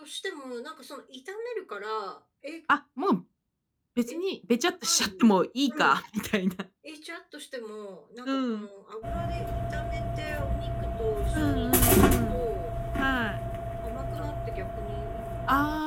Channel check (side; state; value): both; identical; correlation 1.00